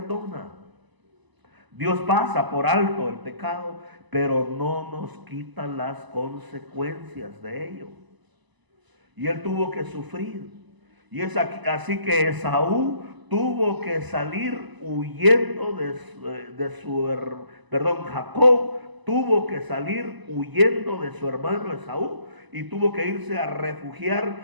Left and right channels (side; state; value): left; late; 1.0 ms